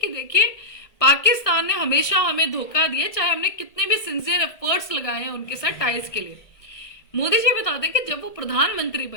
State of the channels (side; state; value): right; late; 1.7 ms